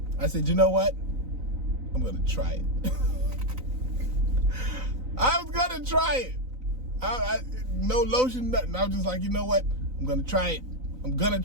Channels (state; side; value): late; left; 3.9 ms